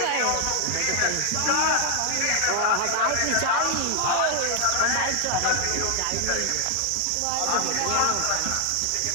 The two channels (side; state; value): both; different; correlation 0.00